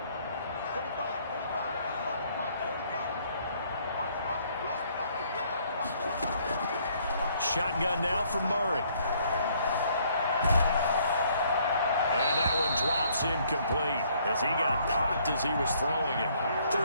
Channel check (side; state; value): both; inverted; correlation -0.65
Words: Shotgun now for Murray. And that one drops incomplete as he got popped as he was throwing it.